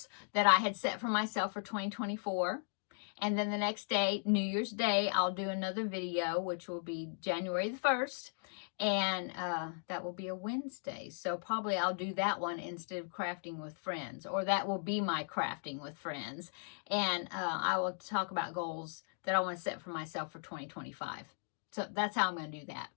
that I had set for myself for 2024. And then the next day, New Year's Day, I'll do another video, which will be January the 1st. And that will be a Wednesday. So probably I'll do that one instead of crafting with friends. Or that will be my crafting with friends. And I will talk about goals that I want to set for myself for 2025. So that's how I'm going to do that.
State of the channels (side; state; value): right; silent; digital silence